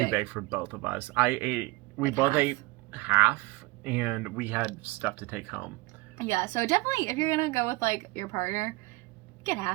big for both of us. We both ate half, and we had stuff to take home. Yeah, so definitely, if you're gonna go with like your partner, get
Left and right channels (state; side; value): quieter; left; 22.3 dB